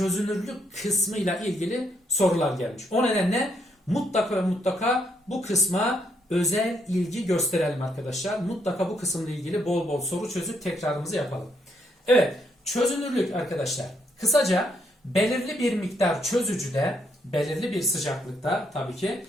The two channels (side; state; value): both; normal; correlation 0.75